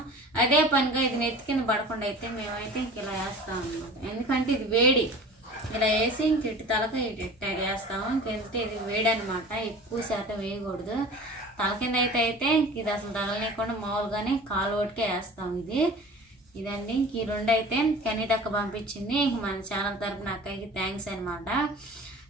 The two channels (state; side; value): normal; both; correlation 0.41